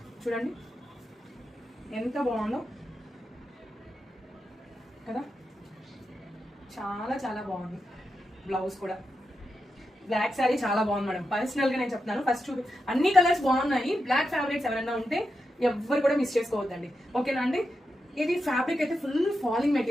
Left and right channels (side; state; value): both; normal; correlation 0.87